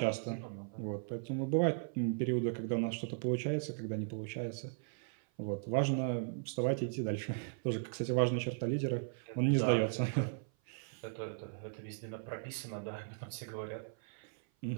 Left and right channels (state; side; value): silent; left; 53 dB below the other